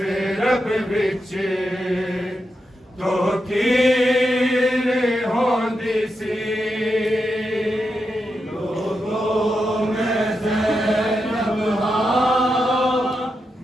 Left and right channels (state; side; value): normal; both; correlation 0.87